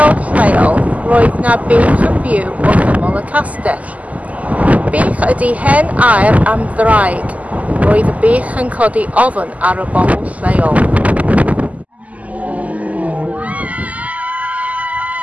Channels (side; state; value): left; late; 0.073 ms